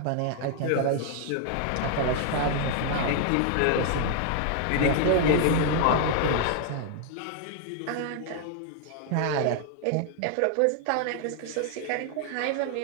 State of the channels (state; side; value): different; both; correlation 0.00